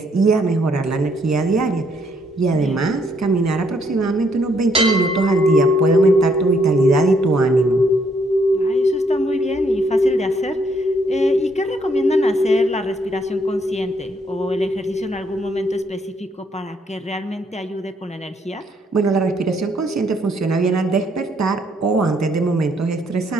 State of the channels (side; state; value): both; normal; correlation 0.70